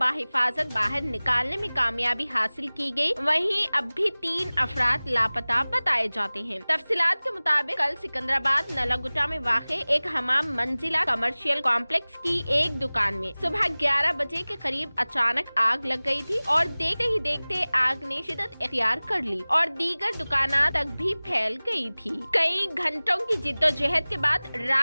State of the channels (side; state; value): both; inverted; correlation -0.99